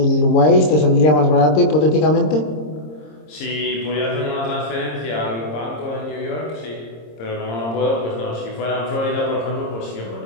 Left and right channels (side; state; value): right; late; 26 ms